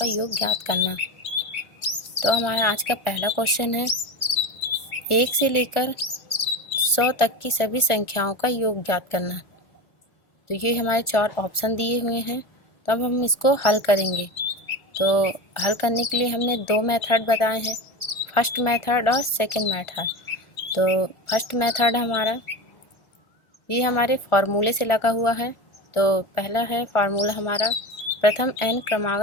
योग ज्ञात करना। तो हमारा आज का पहला क्वेश्चन है 1 से लेकर 100 तक की सभी संख्याओं का योग ज्ञात करना। तो ये हमारे 4 ऑप्शन दिए हुए हैं। तो अब हम इसको हल करेंगे। तो हल करने के लिए हमने 2 मेथड बताए हैं, फर्स्ट मेथड और सेकंड मेथड। तो फर्स्ट मेथड हमारा ये हमारे फार्मूले से लगा हुआ है। तो पहला है फार्मूला हमारा प्रथम n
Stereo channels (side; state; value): right; late; 1.4 ms